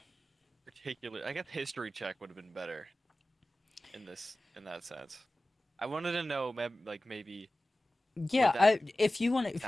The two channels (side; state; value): both; normal; correlation 0.96